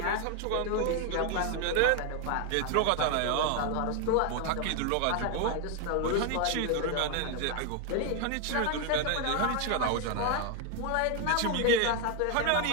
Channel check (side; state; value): both; different; correlation 0.01